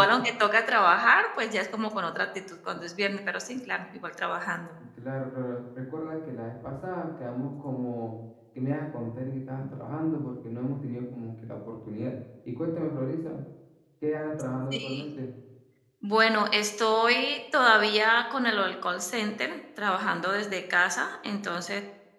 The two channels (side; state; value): both; identical; correlation 1.00